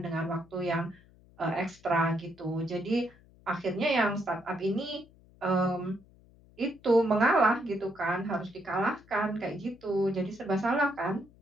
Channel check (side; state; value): left; noise; hum, 27 dB below the sound